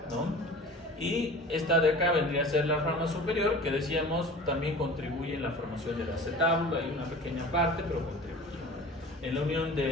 ¿no? Y esta de acá vendría a ser la rama superior, que decíamos también contribuye en la formación del acetábulo. Hay una pequeña parte, pero contribuye. En la unión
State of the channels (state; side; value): normal; both; correlation 0.40